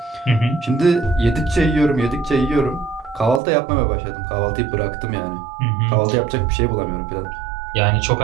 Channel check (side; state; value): left; drops out; at 3.4 s